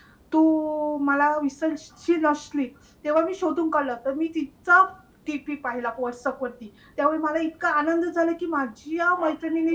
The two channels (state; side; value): identical; both; correlation 1.00